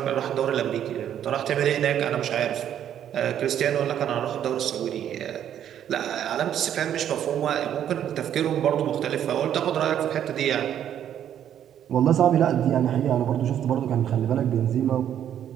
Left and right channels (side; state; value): left; quieter; 10.1 dB